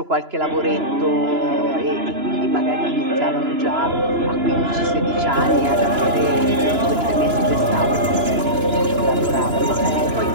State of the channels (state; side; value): late; left; 2.9 ms